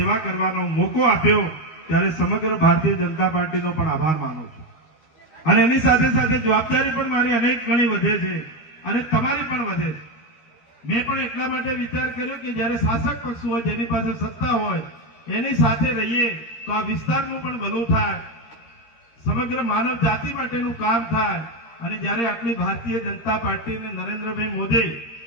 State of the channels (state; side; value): late; right; 13 ms